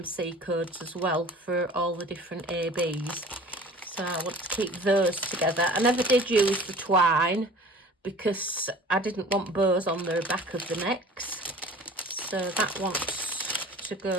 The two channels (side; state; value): both; normal; correlation 0.44